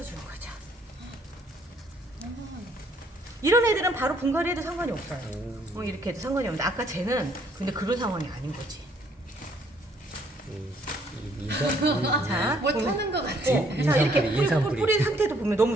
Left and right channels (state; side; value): normal; both; correlation 0.65